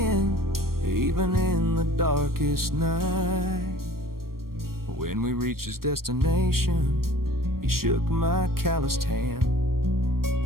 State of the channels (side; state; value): left; late; 0.93 ms